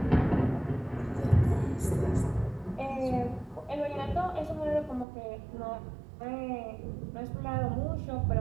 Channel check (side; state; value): left; drops out; at 5.1 s